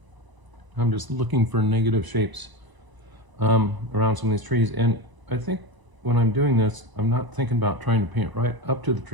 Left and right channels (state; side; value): late; left; 1.0 ms